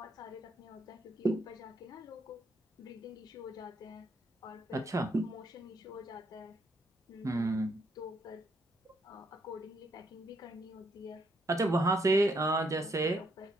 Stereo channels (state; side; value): normal; both; correlation 0.74